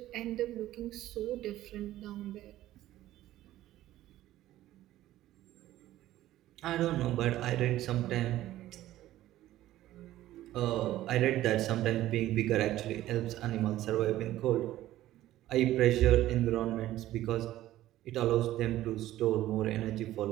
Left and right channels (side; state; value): left; quieter; 14.5 dB